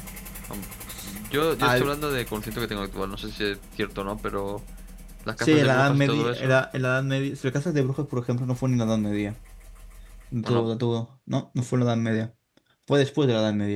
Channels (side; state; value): both; identical; correlation 1.00